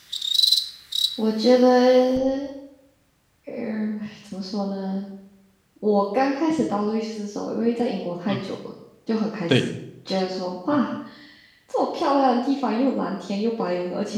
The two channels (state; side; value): identical; both; correlation 1.00